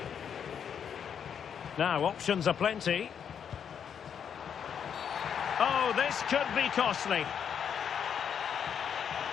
Now, options are plenty. Oh, this could be costly.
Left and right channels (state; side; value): quieter; right; 7.9 dB